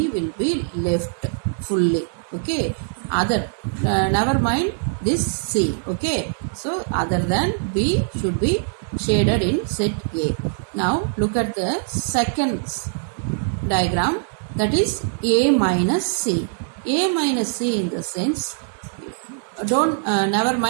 will be left fully. Okay. Other, never mind this C. Okay. So other than B should be shaded in set A. Now look at the second diagram, that is A minus C. A minus C in the sense, don't never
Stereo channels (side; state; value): left; silent; digital silence